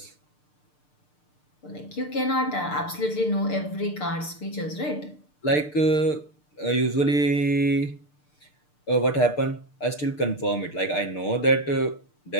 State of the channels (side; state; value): right; late; 6.7 ms